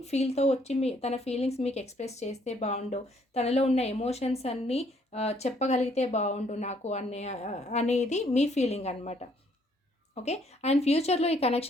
ఫీల్‌తో వచ్చి తన ఫీలింగ్స్ మీకు ఎక్స్‌ప్రెస్ చేస్తే బావుండు. తనలో ఉన్న ఎమోషన్స్ అన్నీ చెప్పగలిగితే బావుండు నాకు అనేది మీ ఫీలింగ్ అనమాట. ఓకే. అండ్ ఫ్యూచర్‌లో ఈ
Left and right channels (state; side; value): normal; both; correlation 0.66